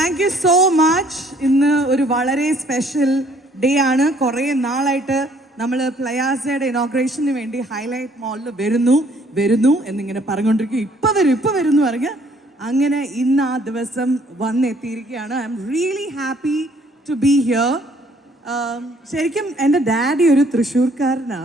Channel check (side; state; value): both; normal; correlation 0.62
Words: you so much. ഇന്ന് ഒരു വളരെ സ്പെഷ്യൽ ഡേ ആണ്. കുറേ നാളായിട്ട് നമ്മൾ പ്ലയാസയുടെ ഇനോഗ്രേഷന് വേണ്ടി ഹൈലൈറ്റ് മോളിൽ വരുന്നു എന്നിങ്ങനെ പറഞ്ഞുകൊണ്ടിരിക്കും. ഇപ്പം വരും എന്ന് പറഞ്ഞ് അങ്ങനെ ഇന്ന് ആ ദിവസം വന്നെത്തിയിരിക്കുകയാണ്. I'm really happy to be here. ശരിക്കും എൻ്റെ ഡാഡി ഒരു